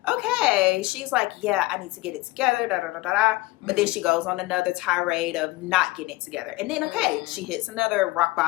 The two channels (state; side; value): quieter; right; 20.6 dB